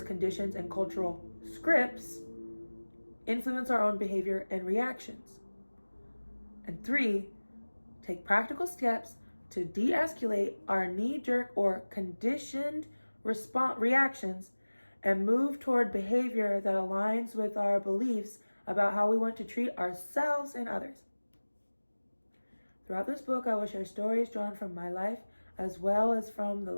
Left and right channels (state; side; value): inverted; both; correlation -1.00